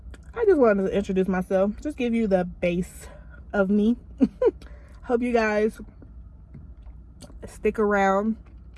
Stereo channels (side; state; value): both; identical; correlation 1.00